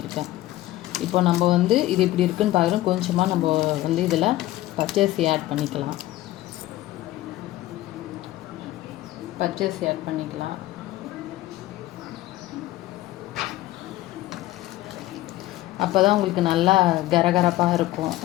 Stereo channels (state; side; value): quieter; right; 16.1 dB